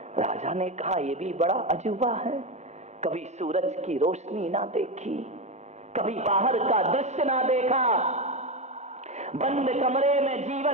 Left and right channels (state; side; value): late; left; 0.33 ms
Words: राजा ने कहा यह भी बड़ा अजूबा है, कभी सूरज की रोशनी ना देखी, कभी बाहर का दृश्य ना देखा, बंद कमरे में